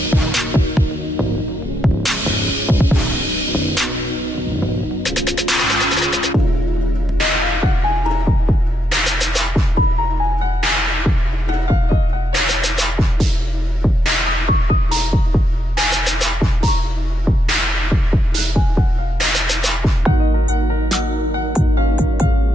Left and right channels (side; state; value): both; normal; correlation 0.80